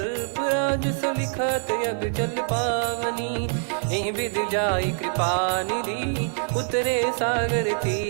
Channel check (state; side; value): silent; left; 62 dB below the other